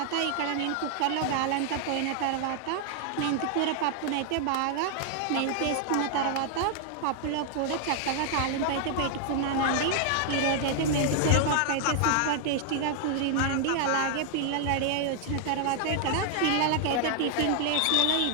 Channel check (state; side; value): different; both; correlation 0.00